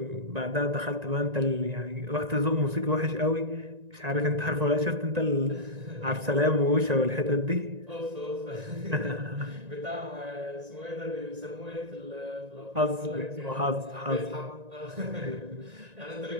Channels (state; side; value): late; left; 1.9 ms